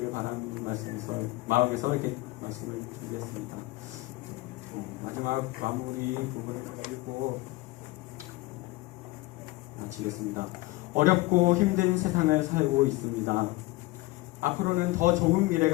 바라는 말씀에서 마음에서 이렇게 말씀을 준비했습니다. 마지막 마무리 부분을 읽고 마치겠습니다. 어렵고 힘든 세상을 살고 있습니다. 앞으로는 더 좋은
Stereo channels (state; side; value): quieter; right; 20.6 dB